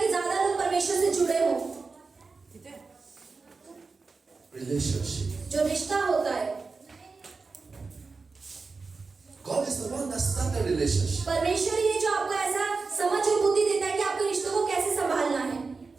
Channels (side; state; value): left; quieter; 4.3 dB